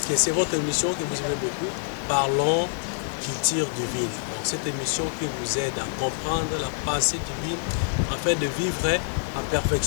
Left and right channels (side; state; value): right; silent; 61 dB below the other